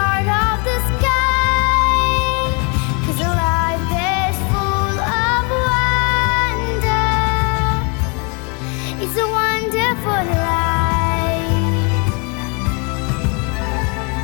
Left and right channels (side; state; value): right; quieter; 34.2 dB